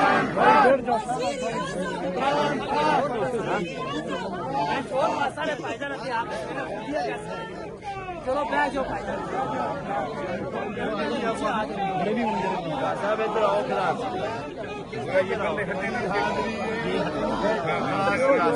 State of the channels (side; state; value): both; identical; correlation 1.00